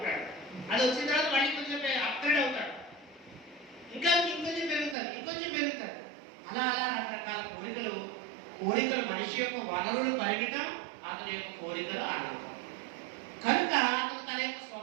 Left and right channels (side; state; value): left; drops out; at 5.0 s